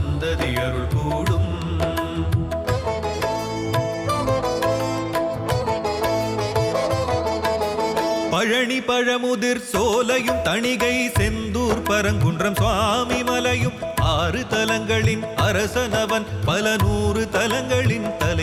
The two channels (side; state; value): both; identical; correlation 1.00